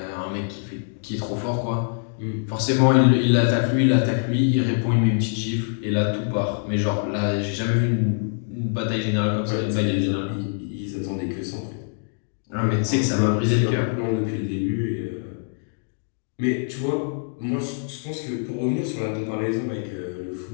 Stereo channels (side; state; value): right; silent; digital silence